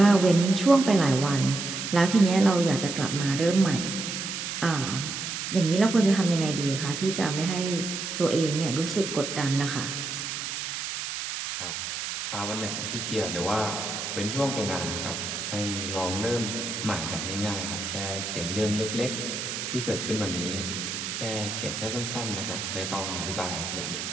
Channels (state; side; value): noise; right; hiss, 5 dB below the sound